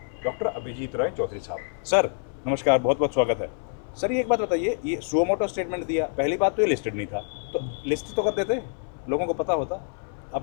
डॉक्टर अभिजीत रॉय चौधरी साहब। सर नमस्कार, बहुत बहुत स्वागत है। सर ये एक बात बताइए, ये सुओ मोटो स्टेटमेंट दिया, पहली बात तो ये लिस्टेड नहीं था, तो लिस्ट तो कर देते, लोगों को पता होता,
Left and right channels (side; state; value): right; silent; 61 dB below the other